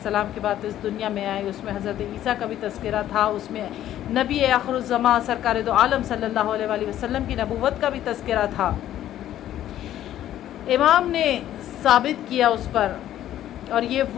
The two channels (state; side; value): quieter; right; 12.2 dB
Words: کے بعد اس دنیا میں آئے، اس میں حضرت عیسیٰ کا بھی تذکرہ تھا، اس میں نبی آخر الزماں سرکار دو عالم صلی اللہ علیہ وآلہ وسلم کی نبوت کا بھی تذکرہ تھا۔ امام نے ثابت کیا اس پر، اور یہ